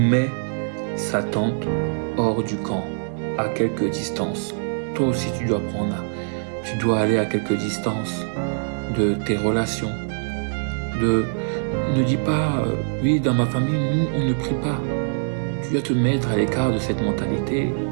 sa tente hors du camp, à quelque distance. Toi aussi, tu dois aller à quelque distance de tes relations. Ne dis pas, oui, dans ma famille, nous, on ne prie pas. Tu dois te mettre à l'écart de cette mentalité.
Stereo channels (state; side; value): silent; left; digital silence